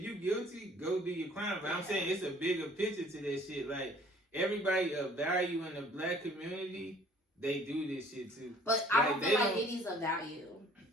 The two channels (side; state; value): both; normal; correlation 0.54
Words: guilty, go do your crime. But I'm saying it's a bigger picture to that shit. Like, everybody of value in the black community, they do this shit too. But I don't feel like Diddy's of value.